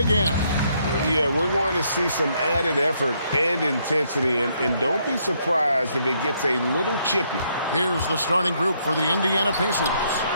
Yeah, we're going to see some added effort and intensity, and don't be surprised if it gets a little chippy. Here's the starting group for the Indiana Pacers.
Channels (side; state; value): both; inverted; correlation -0.72